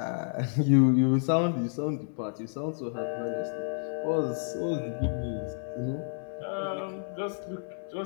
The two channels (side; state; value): right; silent; 58 dB below the other